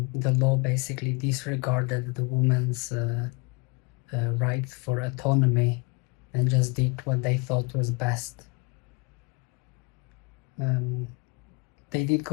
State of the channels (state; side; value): quieter; right; 25.8 dB